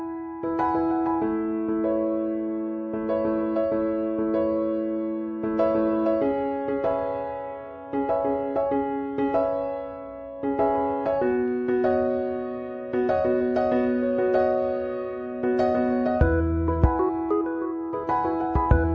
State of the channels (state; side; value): identical; both; correlation 1.00